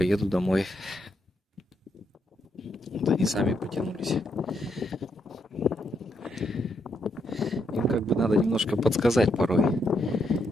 домой. Вот они сами потянулись. Им как бы надо немножко подсказать порой.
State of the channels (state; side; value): normal; both; correlation 0.78